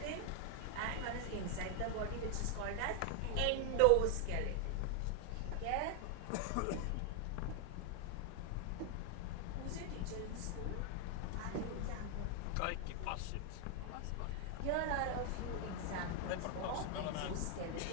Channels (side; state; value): both; different; correlation 0.00